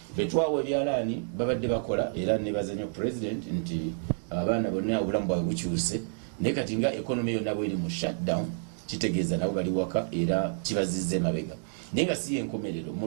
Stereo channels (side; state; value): left; silent; digital silence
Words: betwawa ebyalaani babadde bakola era nebaza nnyo president nti abaana bonna obulamu bwabwe bukyuse naye kati nga economy yonna bweri mu shutdown kitegeeza nabo bali waka era kibazizza emabega naye nga si yenkomerero mu